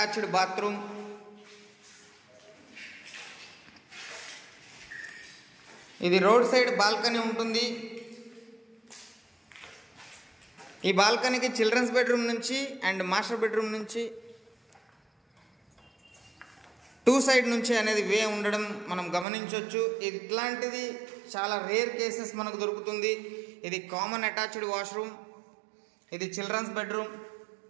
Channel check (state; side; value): drops out; left; at 19.2 s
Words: bathroom. ఇది రోడ్ సైడ్ బాల్కనీ ఉంటుంది. ఈ బాల్కనీకి చిల్డ్రన్స్ బెడ్రూమ్ నుంచి అండ్ మాస్టర్ బెడ్రూమ్ నుంచి 2 సైడ్ నుంచి అనేది వే ఉండడం మనం గమనించవచ్చు. ఇట్లాంటిది చాలా రేర్ కేసెస్ మనకు దొరుకుతుంది. ఇది కామన్ అటాచ్డ్ వాష్రూమ్. ఇది children's bedroom.